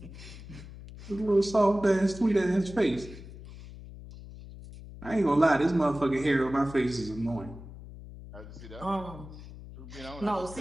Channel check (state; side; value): noise; left; hum, 15 dB below the sound